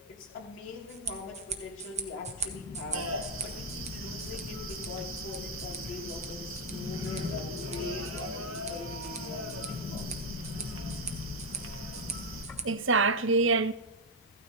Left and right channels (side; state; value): both; normal; correlation 0.03